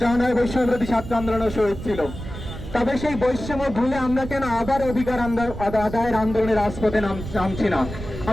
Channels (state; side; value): noise; right; rumble, 10 dB below the sound